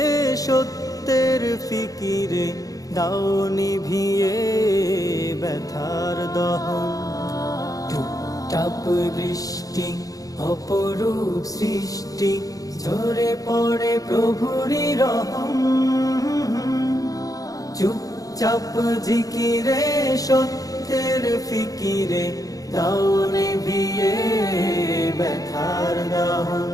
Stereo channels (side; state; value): right; late; 0.17 ms